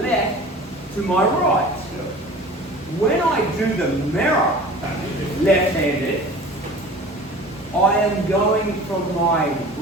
to my right. Yep. When I do the mirror left-handed, I am going from my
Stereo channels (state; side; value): normal; both; correlation 0.41